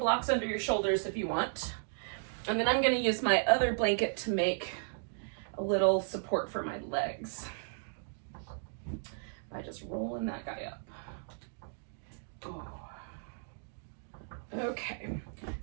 under your shoulders if you want. And then I'm going to use my other blanket to make a little support for my legs by just rolling that guy up. Okay,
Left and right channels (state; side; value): silent; left; digital silence